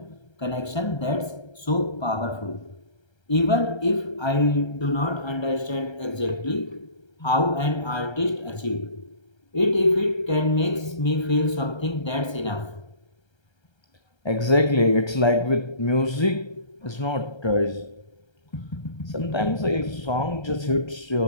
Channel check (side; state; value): right; late; 1.3 ms